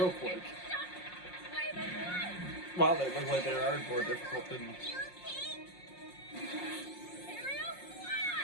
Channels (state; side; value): late; right; 5.5 ms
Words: quick. Wow, they look like they are more difficult than...